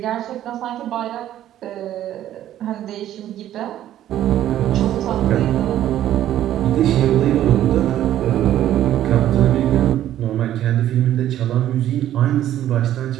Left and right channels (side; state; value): left; quieter; 12.2 dB